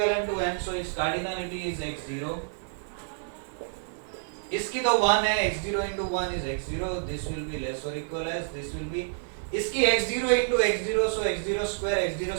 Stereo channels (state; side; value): silent; left; digital silence